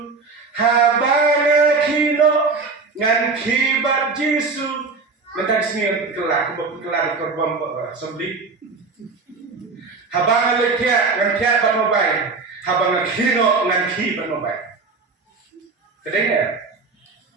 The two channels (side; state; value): left; quieter; 4.2 dB